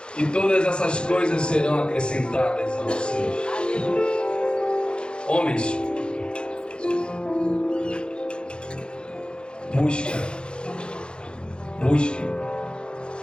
e todas essas coisas serão acrescentadas a vocês. Homens,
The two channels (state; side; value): late; right; 0.052 ms